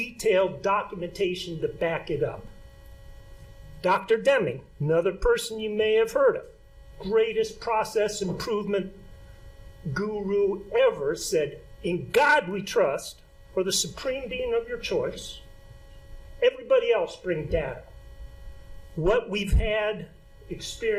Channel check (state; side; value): identical; both; correlation 1.00